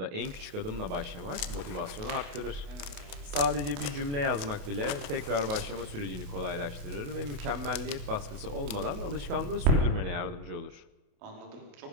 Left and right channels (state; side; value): late; left; 28 ms